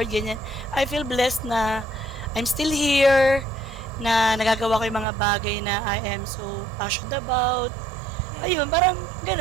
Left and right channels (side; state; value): left; drops out; at 5.1 s